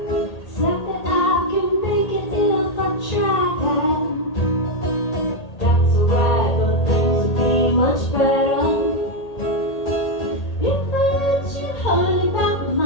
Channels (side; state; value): right; late; 1.8 ms